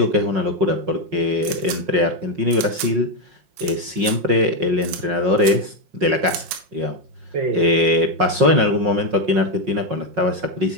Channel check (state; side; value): late; left; 5.5 ms